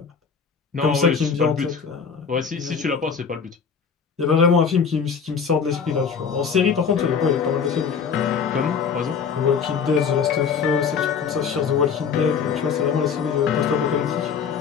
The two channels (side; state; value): right; quieter; 6.3 dB